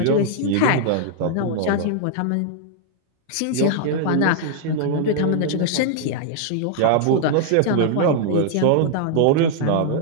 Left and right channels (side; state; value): both; different; correlation -0.01